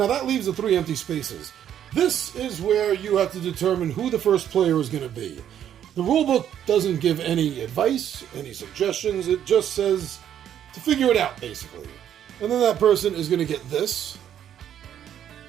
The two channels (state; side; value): quieter; left; 10.0 dB